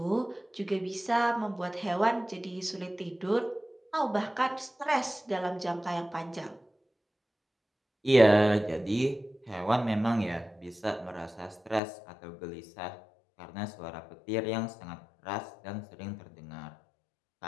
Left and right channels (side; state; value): right; drops out; at 11.8 s